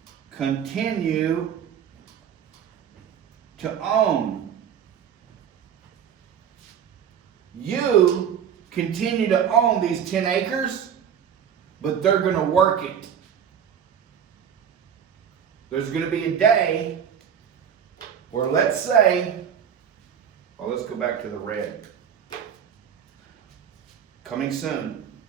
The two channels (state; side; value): quieter; left; 8.3 dB